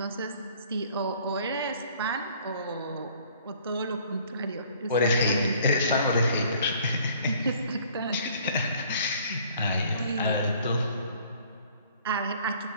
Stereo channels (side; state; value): both; inverted; correlation -0.56